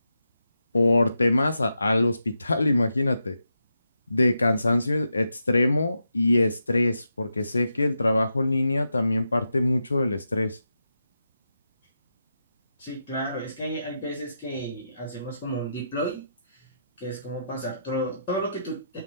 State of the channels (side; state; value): both; inverted; correlation -0.86